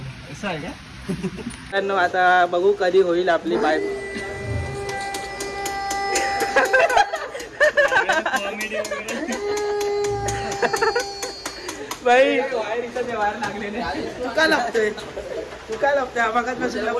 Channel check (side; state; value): both; identical; correlation 1.00